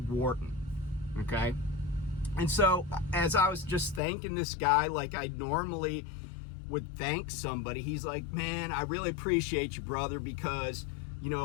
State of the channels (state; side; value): drops out; right; at 4.0 s